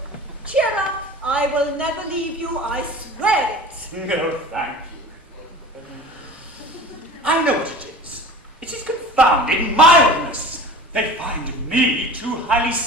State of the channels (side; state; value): both; normal; correlation 0.39